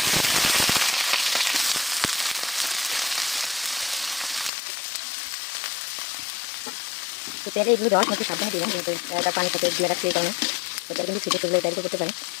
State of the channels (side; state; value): right; drops out; at 4.5 s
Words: তো তেলে এগুলো দেওয়ার সময় একটু সাবধানে দিবেন, যেহেতু এটা পানির সাথে দিয়ে রাখছি, এই কারণে তো তেল কিন্তু ছিটে চলে ডাইরেক্ট করতে পারে।